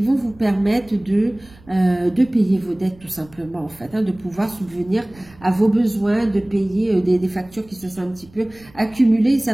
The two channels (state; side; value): noise; right; rumble, 25 dB below the sound